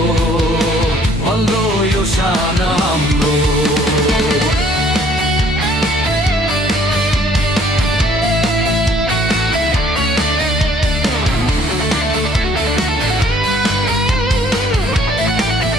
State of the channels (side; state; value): both; normal; correlation 0.60